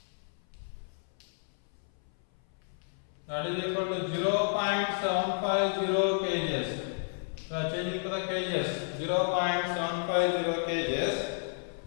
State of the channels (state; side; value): silent; right; 57 dB below the other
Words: that is equal to 0.750 kgs. So changing to the kgs, 0.750 kgs.